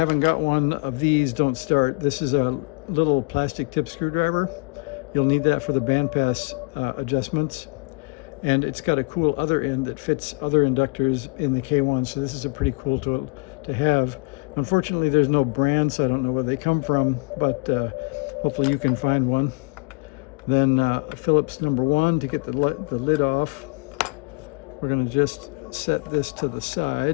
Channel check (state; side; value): quieter; right; 31.4 dB